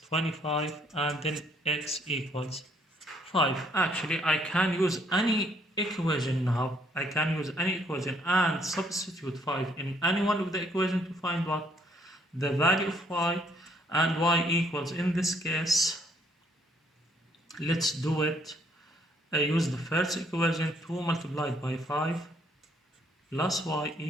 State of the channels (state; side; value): normal; both; correlation 0.67